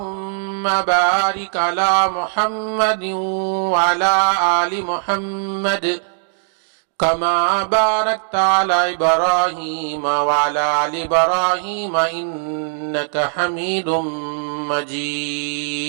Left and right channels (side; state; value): left; silent; digital silence